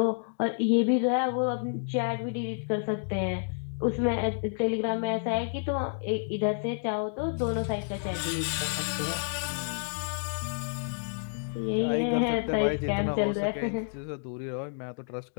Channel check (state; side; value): silent; right; digital silence